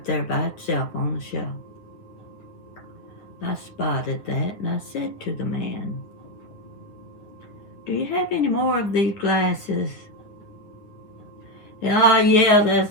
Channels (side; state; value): right; late; 9.8 ms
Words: there by itself on the shelf. I spotted that and I said to the man, "Do you have any more of these glasses?" "Oh, yeah,